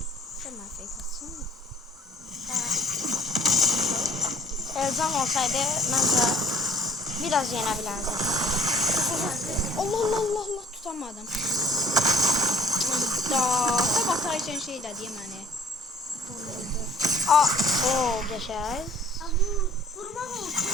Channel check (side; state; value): both; normal; correlation 0.54